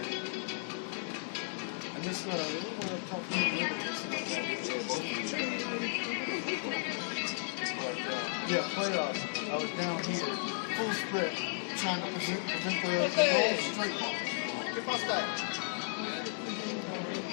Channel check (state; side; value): silent; right; digital silence